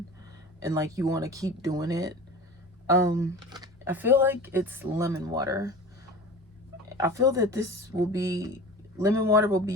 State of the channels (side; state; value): both; normal; correlation 0.36